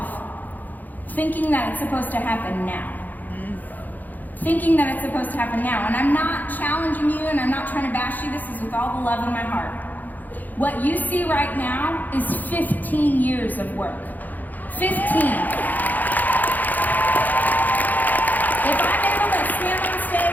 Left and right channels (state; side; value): late; right; 0.083 ms